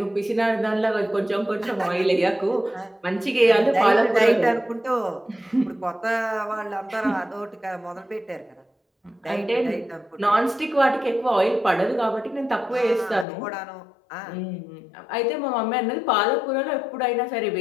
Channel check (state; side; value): drops out; right; at 13.2 s